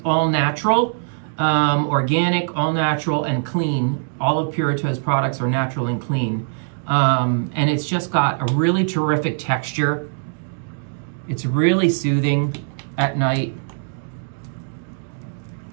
all natural, organic, all natural, and clean. All of Purito's products are natural and clean. And it's just got a really terrific texture. It's really soothing at night.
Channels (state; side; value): silent; left; digital silence